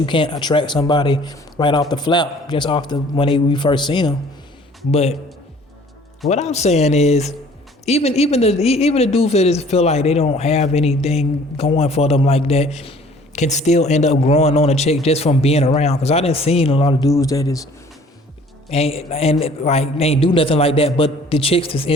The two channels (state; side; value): normal; both; correlation 0.53